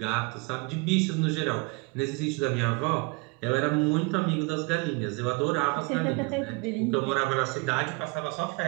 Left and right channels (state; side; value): quieter; left; 29.3 dB